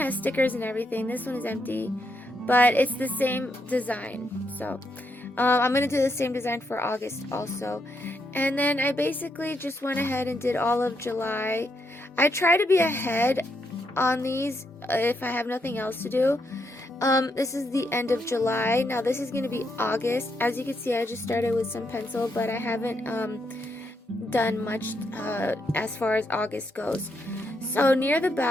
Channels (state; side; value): normal; both; correlation 0.79